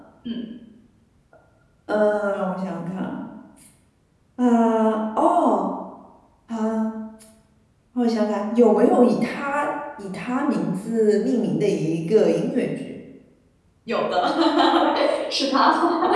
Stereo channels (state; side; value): identical; both; correlation 1.00